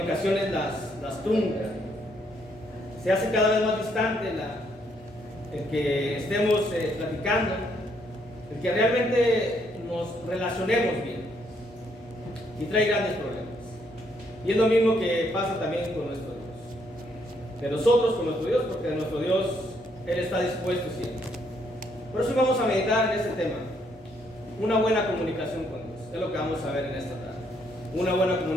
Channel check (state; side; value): normal; both; correlation 0.72